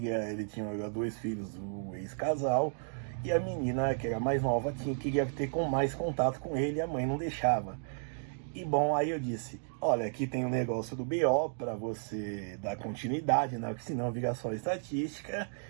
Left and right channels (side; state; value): left; silent; digital silence